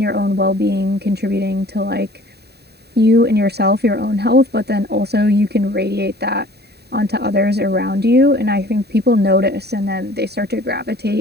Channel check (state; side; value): late; left; 0.48 ms